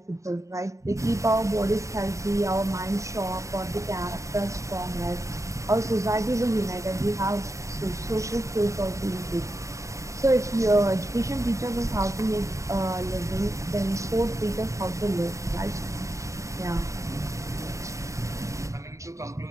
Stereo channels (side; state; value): left; late; 0.15 ms